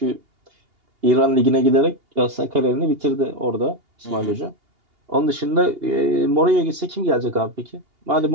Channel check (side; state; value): left; late; 2.8 ms